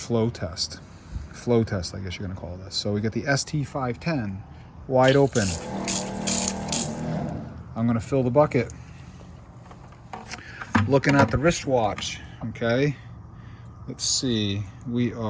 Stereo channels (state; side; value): identical; both; correlation 1.00